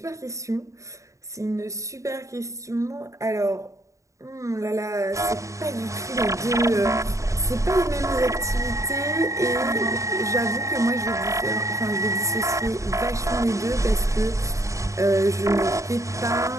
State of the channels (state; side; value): late; left; 0.15 ms